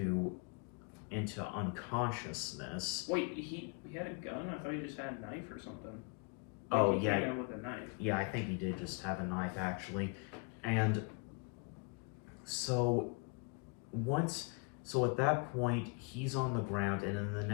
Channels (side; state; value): right; quieter; 31.5 dB